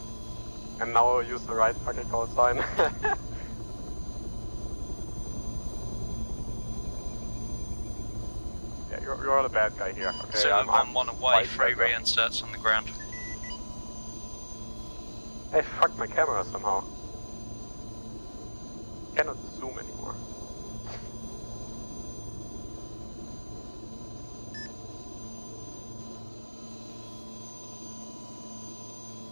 And now I'll use the right fucking call sign. Yeah, you're the bad guy here. Okay, Zulu I'm 1-1 away, 3 reinserts on the ground. I fucked my camera somehow. Cannot zoom anymore.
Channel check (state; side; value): inverted; both; correlation -1.00